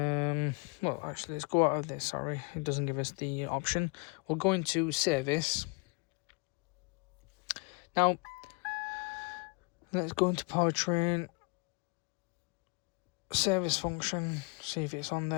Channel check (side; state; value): right; quieter; 32.0 dB